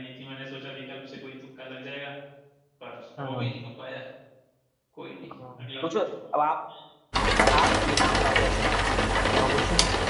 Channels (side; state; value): both; identical; correlation 1.00